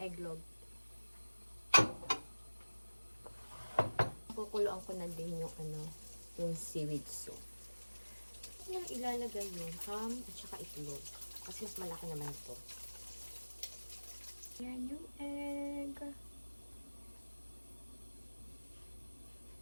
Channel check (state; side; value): inverted; both; correlation -1.00